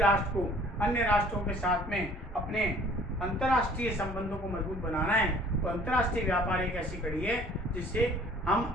को अन्य राष्ट्रों के साथ में अपने अंतर्राष्ट्रीय संबंधों को मजबूत बनाना है तो अंतर्राष्ट्रीय व्यापार एक ऐसी कड़ी है जिससे हम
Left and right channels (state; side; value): normal; both; correlation 0.53